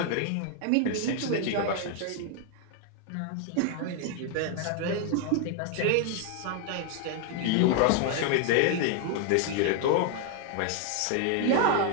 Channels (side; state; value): both; different; correlation 0.00